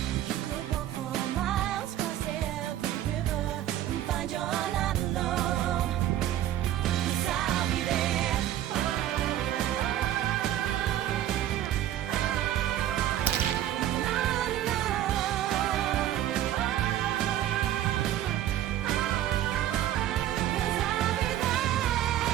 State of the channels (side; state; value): left; quieter; 12.3 dB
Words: You could walk for miles, cross every river and find you're not alone. 'Cause I'll be there.